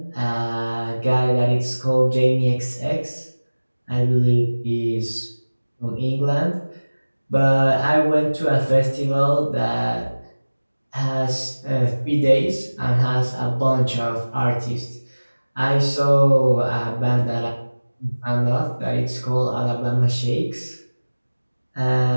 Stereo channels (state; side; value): inverted; both; correlation -1.00